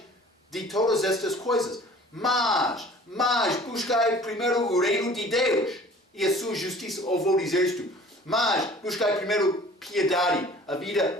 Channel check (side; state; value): both; normal; correlation 0.48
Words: de todas estas coisas. Mas buscai primeiro o reino de Deus e a sua justiça. Ou vou dizer isto: mas buscai primeiro piedade, a